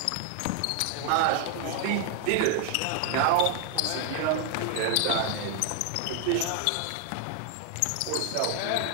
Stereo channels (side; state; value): both; different; correlation 0.00